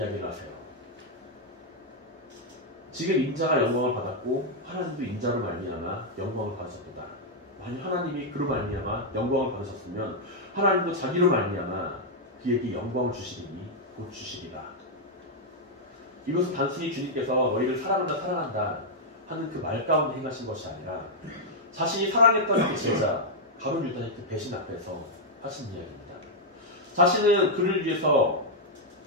하세요. 지금 인자가 영광을 받았고 하나님도 인자로 말미암아 영광을 받으셨도다. 만약 하나님이 그로 말미암아 영광을 받으셨으면 하나님도 자기로 말미암아 그에게 영광을 주시리니 곧 주시리라. 이것은 단순히 주님께서 너희를 사랑한다 하는 그 말 가운데 행하신 것이 아니라 자신이 사랑했던 그 제자 가룟 유다의 그 배신 앞에서 하신 이야기입니다. 자신은 그를 위해서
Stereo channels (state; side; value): normal; both; correlation -0.03